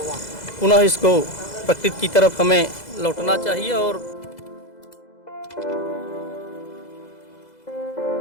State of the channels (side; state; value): right; late; 2.0 ms